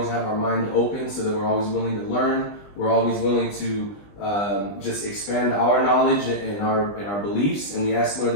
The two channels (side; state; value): right; late; 20 ms